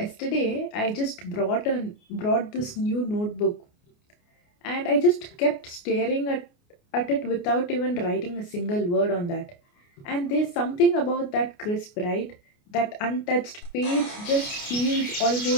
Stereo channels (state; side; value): late; right; 29 ms